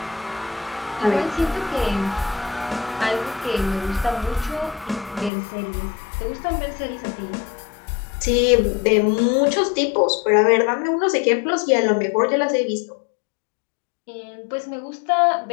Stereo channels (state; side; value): drops out; right; at 5.3 s